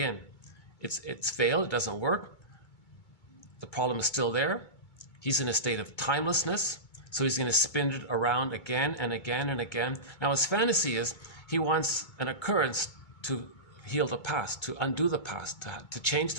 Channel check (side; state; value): right; late; 2.2 ms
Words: It's failed, it doesn't work. The problem is still there. He's in a state of timelessness. So he's going to spin it around again and again and again. Now his fantasy is he wants an occurrence to heal the past, to undo the past, to change